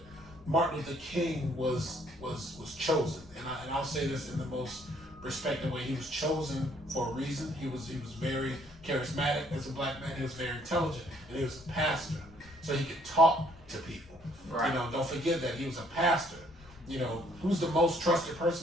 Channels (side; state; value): left; noise; rumble, 22 dB below the sound